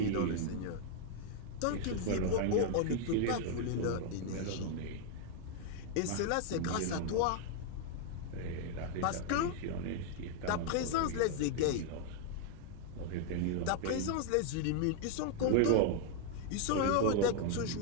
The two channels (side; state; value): both; different; correlation 0.00